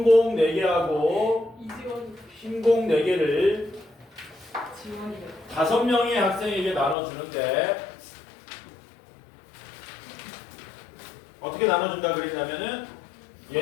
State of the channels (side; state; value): right; drops out; at 7.0 s